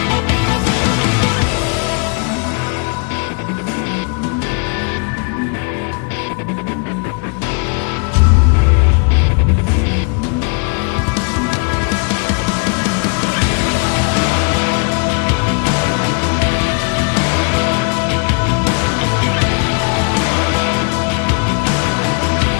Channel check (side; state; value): right; quieter; 36.8 dB